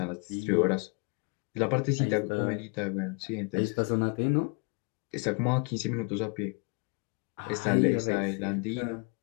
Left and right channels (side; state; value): right; quieter; 34.5 dB